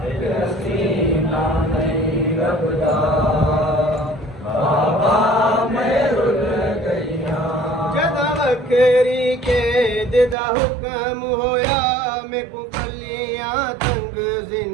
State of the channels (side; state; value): left; drops out; at 10.4 s